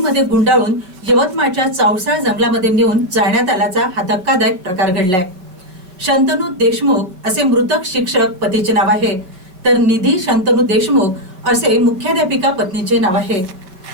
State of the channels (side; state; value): left; late; 5.3 ms